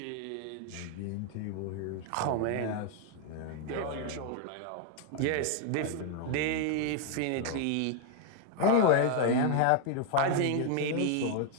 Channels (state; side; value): different; both; correlation 0.00